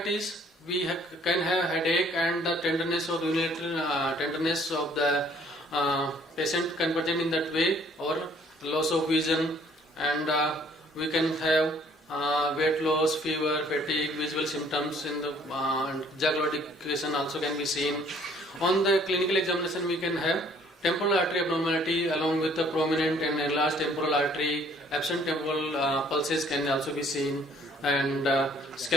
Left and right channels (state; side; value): normal; both; correlation 0.60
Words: we can have headache and the tenderness or unilateral tenderness of the patient can present in that way, or loss of vision, and we can have weight loss, fever, fatigue, visual symptoms in the jaw claudication also can be seen. On the clinical examination, we can have temporal artery abnormality along with the prominent and enlarged temporal artery. Absent temporal pulses can also be seen, and